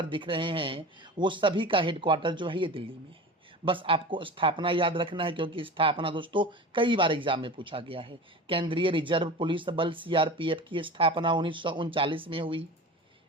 दिख रहे हैं, वो सभी का हेडक्वार्टर जो है ये दिल्ली में है। बस आपको स्थापना याद रखना है, क्योंकि स्थापना दोस्तों कई बार एग्जाम में पूछा गया है। केंद्रीय रिजर्व पुलिस बल सीआरपीएफ की स्थापना 1939 में हुई।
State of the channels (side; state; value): both; normal; correlation 0.33